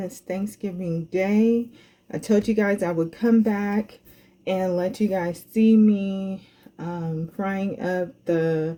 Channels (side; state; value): both; identical; correlation 1.00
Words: Thanksgiving Day. I told you guys I would come back and let you guys see me frying up